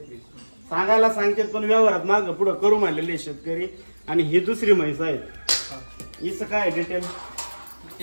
सांगायला सांगते, पण व्यवहारात माग पुढे करू म्हणलेले शेतकरी। आणि ही दुसरी म्हैस आहे, हिचं काय डिटेल?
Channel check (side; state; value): both; inverted; correlation -1.00